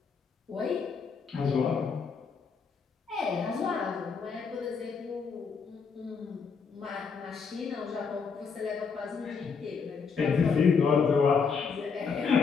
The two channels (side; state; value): right; quieter; 5.6 dB